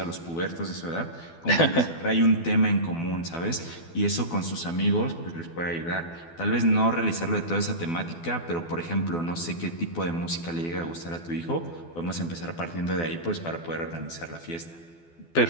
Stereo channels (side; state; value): right; late; 12 ms